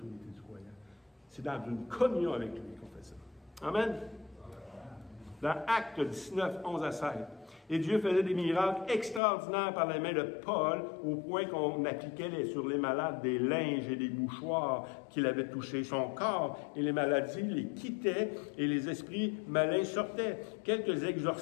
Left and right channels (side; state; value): right; drops out; at 9.2 s